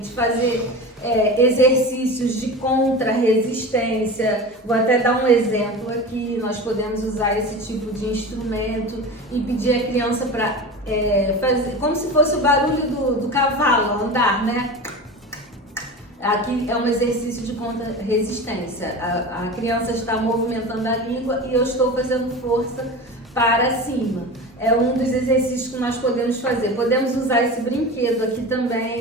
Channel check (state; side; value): normal; both; correlation 0.30